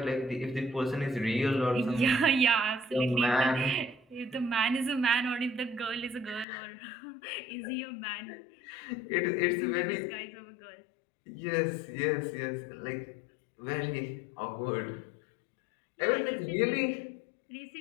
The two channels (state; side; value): drops out; right; at 6.5 s